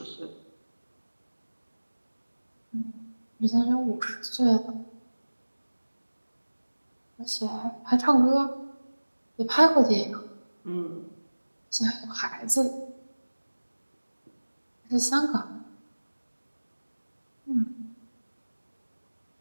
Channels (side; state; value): both; inverted; correlation -1.00